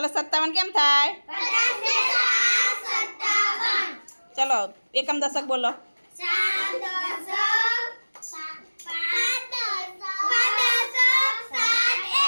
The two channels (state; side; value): inverted; both; correlation -1.00